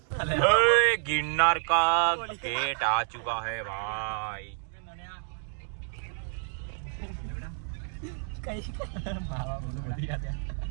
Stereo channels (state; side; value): silent; left; 58 dB below the other